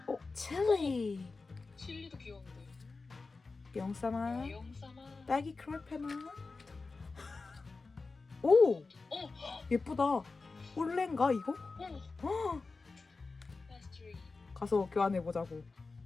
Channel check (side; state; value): right; quieter; 4.0 dB